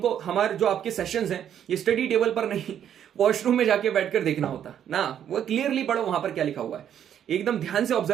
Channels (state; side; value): quieter; left; 9.6 dB